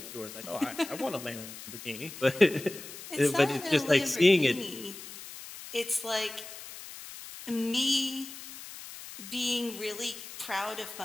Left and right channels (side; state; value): left; noise; hiss, 13 dB below the sound